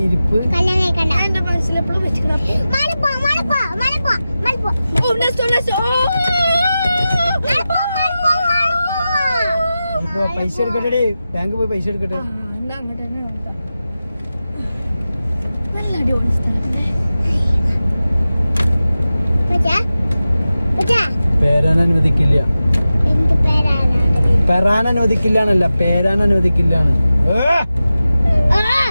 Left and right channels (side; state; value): both; inverted; correlation -0.94